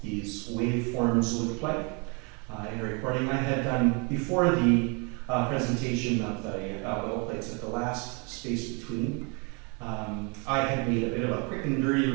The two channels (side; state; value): left; quieter; 33.3 dB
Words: these waveforms look like in a recording I had done before the presentation of the bell plates at the last space between. I had made a bit of a quick and dirty